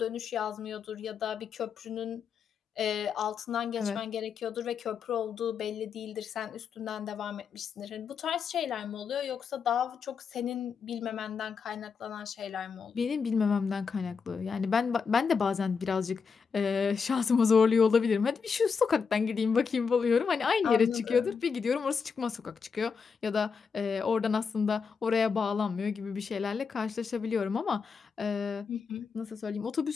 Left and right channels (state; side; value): quieter; right; 5.7 dB